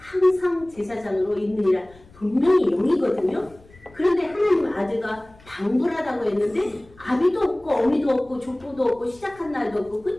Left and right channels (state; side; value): noise; left; rumble, 26 dB below the sound